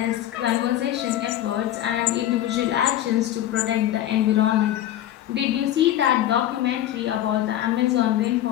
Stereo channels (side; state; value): right; quieter; 12.6 dB